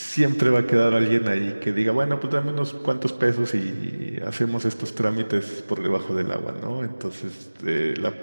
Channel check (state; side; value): inverted; both; correlation -1.00